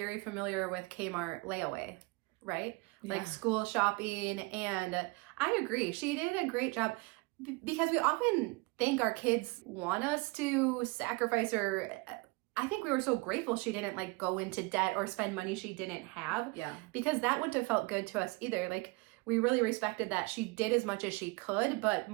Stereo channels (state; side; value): quieter; left; 26.7 dB